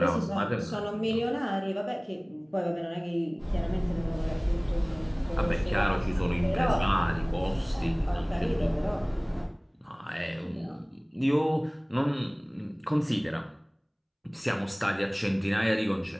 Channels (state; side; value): identical; both; correlation 1.00